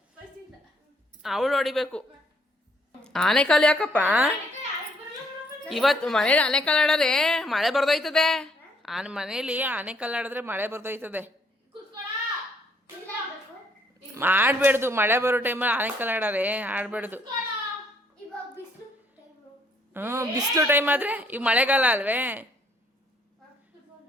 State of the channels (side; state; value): both; normal; correlation 0.67